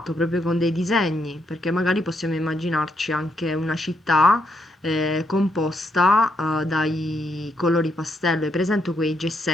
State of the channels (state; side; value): normal; both; correlation 0.77